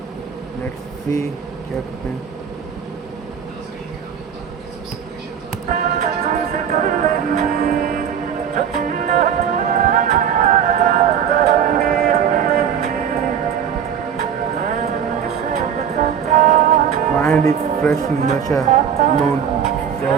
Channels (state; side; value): quieter; left; 8.2 dB